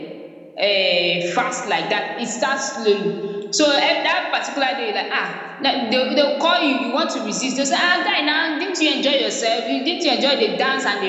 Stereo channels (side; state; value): both; identical; correlation 1.00